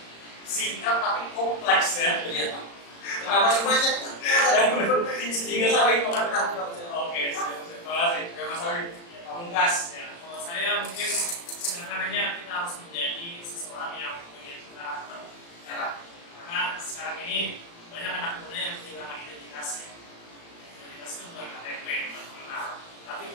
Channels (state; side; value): late; right; 35 ms